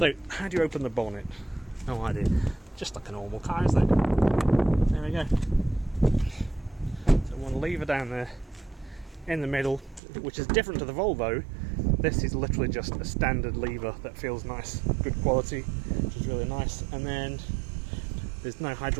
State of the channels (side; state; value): left; drops out; at 10.0 s